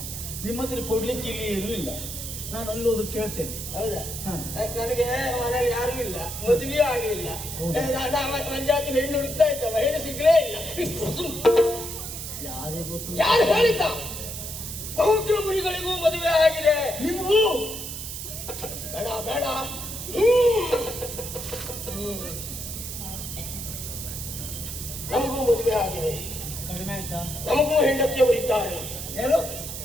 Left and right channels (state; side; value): noise; right; hiss, 7 dB below the sound